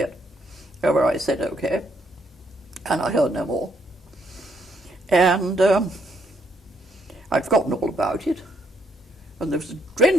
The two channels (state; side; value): normal; both; correlation 0.72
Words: However, I said okay, and I heard no more. And I'd forgotten all about it. And there was a